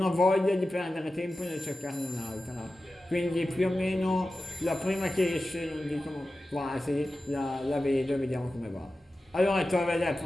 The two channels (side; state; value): both; normal; correlation 0.94